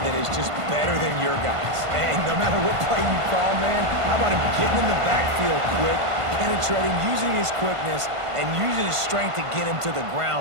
that is just better than your guys. And no matter what play you call, man, how about him getting in the backfield quick, penetrating, using his quickness, and using his strength to get him to the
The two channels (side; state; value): left; late; 1.5 ms